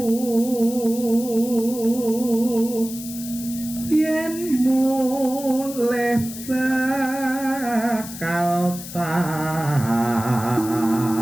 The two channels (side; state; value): left; noise; hiss, 12 dB below the sound